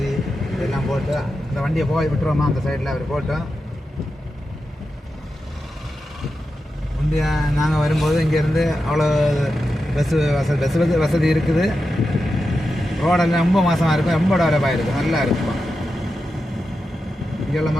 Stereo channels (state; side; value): normal; both; correlation 0.90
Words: இதெல்லாம் போட்டு அந்த வண்டியை போய் விட்டுருவோமா அந்த சைடில் அவர் போட்டோம். முந்தைய நாங்கள் வரும்போது இங்கேருந்து அவ்வளோ பஸ் வசதி இருக்குது. ரோடெல்லாம் ரொம்ப மோசமாக இருக்கும், ரொம்ப டெவலப்பாக இருக்கும், நல்லா இருக்கும். இங்கே உள்ள